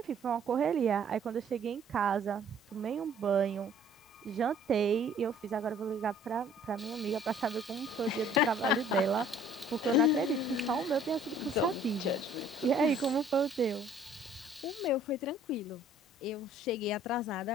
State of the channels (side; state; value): both; normal; correlation 0.55